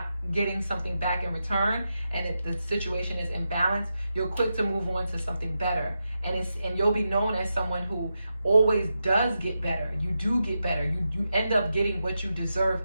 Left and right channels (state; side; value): inverted; both; correlation -0.88